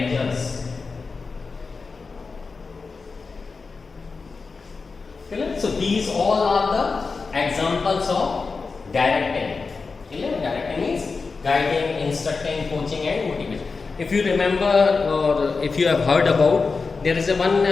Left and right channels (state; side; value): quieter; right; 4.5 dB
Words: So these all are the examples of directing. Directing is guiding, instructing, coaching and motivation. If you remember or if you have heard about, there is a one